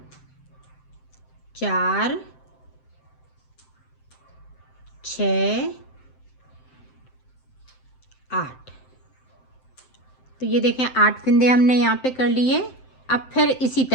4, 6, 8, तो ये देखें 8 फंदे हमने यहाँ पे कर लिए। अब फिर इसी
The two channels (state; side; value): late; right; 7.7 ms